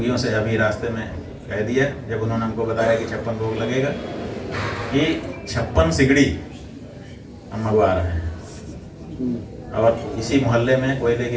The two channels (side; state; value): both; identical; correlation 1.00